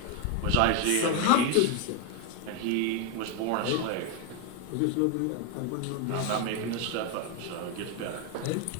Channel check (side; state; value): both; different; correlation 0.01